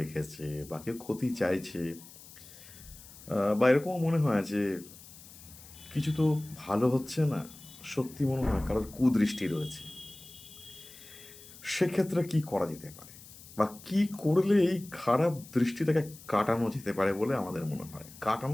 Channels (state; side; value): noise; left; hiss, 19 dB below the sound